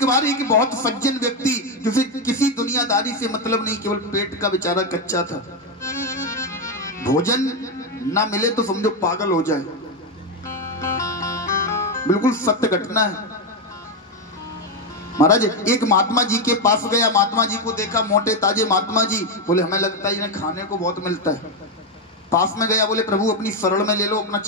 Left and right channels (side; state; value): both; normal; correlation 0.06